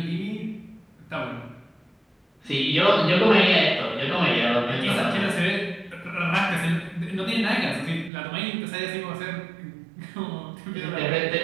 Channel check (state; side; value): drops out; left; at 8.1 s